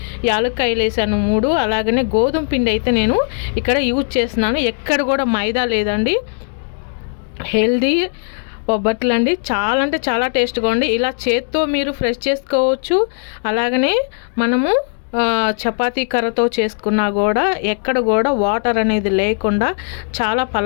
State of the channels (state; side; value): silent; right; 64 dB below the other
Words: యాలక్కాయలు వేసాను 3. అలాగనే గోధుమ పిండి అయితే నేను ఇక్కడ యూజ్ చేస్తున్నాను. ఎక్కడ కూడా మైదా లేదండి. హెల్దీ బొబ్బట్లు అండి. చాలా అంటే చాలా టేస్ట్గా ఉంది. ఇలా చేత్తో మీరు ఫ్రెష్ చేసుకోవచ్చు. అలాగనే మనము చపాతీ కర్రతో చేసుకున్నా కూడా ఎక్కడ కూడా వాటర్ అనేది లేకుండా చాలా